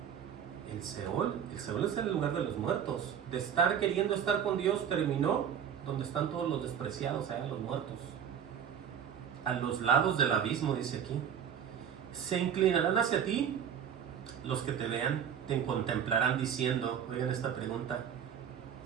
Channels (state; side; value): quieter; left; 8.5 dB